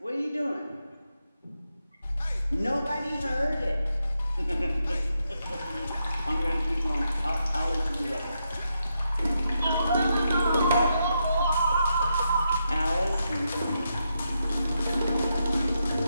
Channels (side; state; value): both; inverted; correlation -0.83